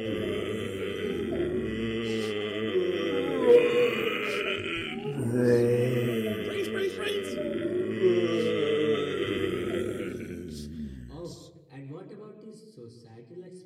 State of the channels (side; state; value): both; identical; correlation 1.00